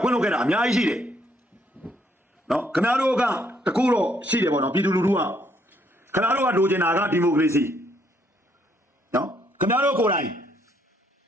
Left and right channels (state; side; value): normal; both; correlation 0.70